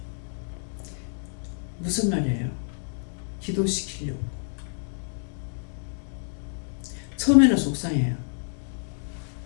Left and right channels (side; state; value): right; silent; digital silence